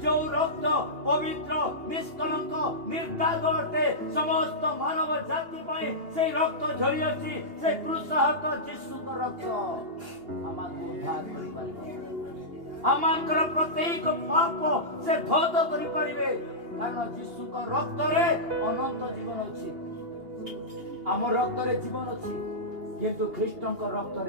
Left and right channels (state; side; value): late; left; 2.8 ms